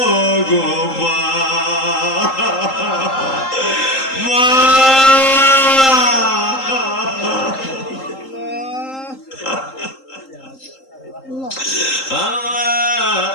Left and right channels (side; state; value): right; late; 3.8 ms